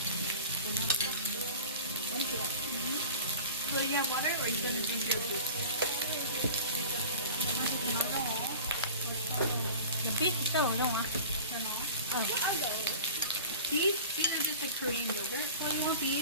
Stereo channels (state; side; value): inverted; both; correlation -0.38